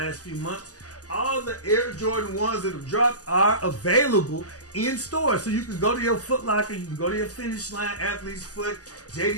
few months. All the Air Jordan 1s that have dropped are available in stores. So you can go to your Foot Locker, you can go to your Finish Line, Athlete's Foot,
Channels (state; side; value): late; right; 0.67 ms